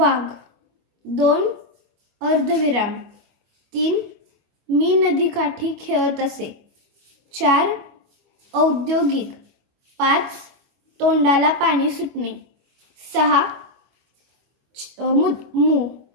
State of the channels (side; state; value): left; late; 25 ms